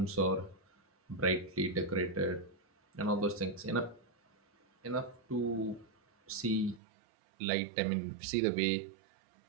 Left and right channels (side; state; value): left; drops out; at 6.8 s